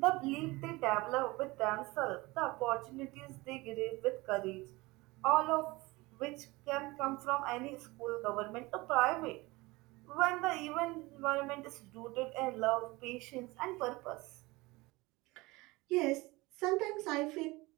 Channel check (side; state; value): left; quieter; 22.2 dB